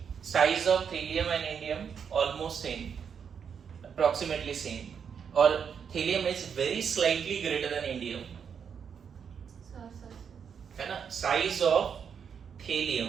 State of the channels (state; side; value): quieter; left; 7.1 dB